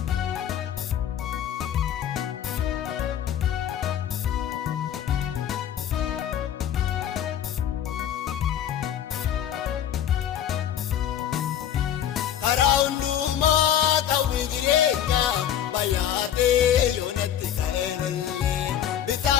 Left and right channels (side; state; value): right; quieter; 10.0 dB